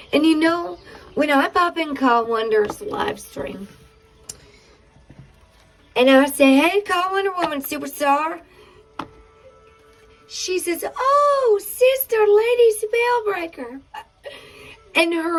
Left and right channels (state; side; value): identical; both; correlation 1.00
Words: And when I pop in Call Wonder's live stream, and I say, hey, Call Wonder Woman Superstar, she says, oh, Sister Lady Spellbreaker. And